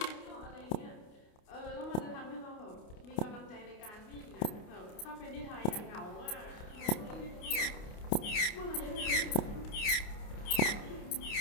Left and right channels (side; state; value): right; late; 29 ms